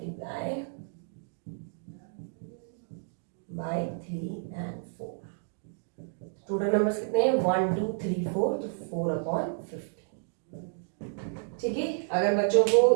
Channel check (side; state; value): left; silent; digital silence